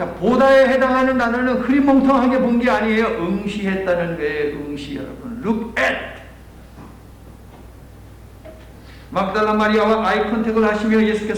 보다에 해당하는 단어는 흐리멍텅하게 본 게 아니에요. 응시했다는 거예요. 응시, 여러분. Look at. 막달라 마리아와 아이 컨택을 하시며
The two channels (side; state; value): both; identical; correlation 1.00